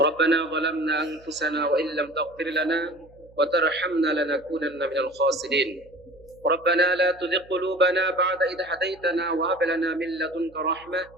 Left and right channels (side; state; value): right; noise; hum, 26 dB below the sound